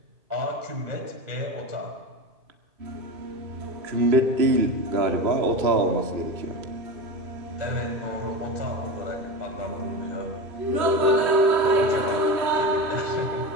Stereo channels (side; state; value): left; late; 2.5 ms